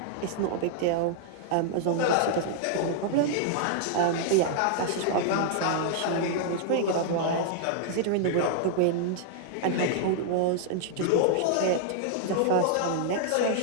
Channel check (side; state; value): both; different; correlation -0.01